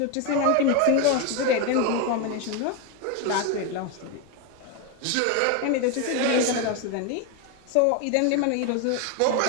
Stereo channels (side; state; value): both; different; correlation 0.02